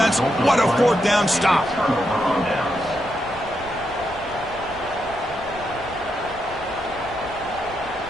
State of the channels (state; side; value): noise; left; rumble, 18 dB below the sound